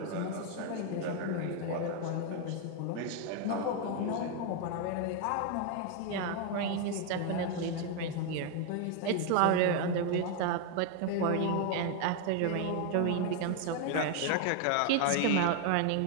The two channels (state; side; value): different; both; correlation 0.01